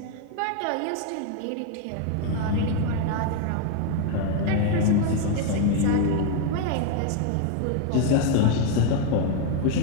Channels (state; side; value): different; both; correlation 0.00